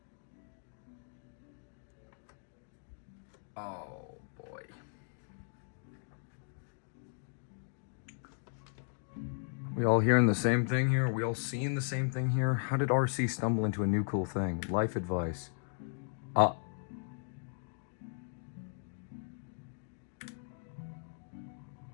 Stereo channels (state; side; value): silent; right; digital silence